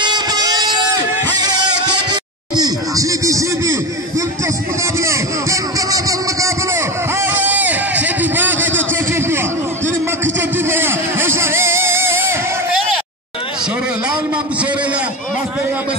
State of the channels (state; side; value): normal; both; correlation 0.22